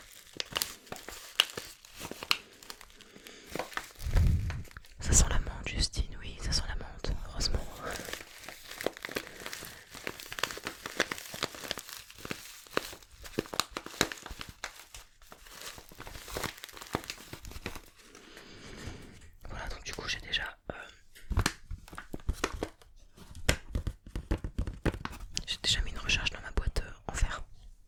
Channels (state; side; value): identical; both; correlation 1.00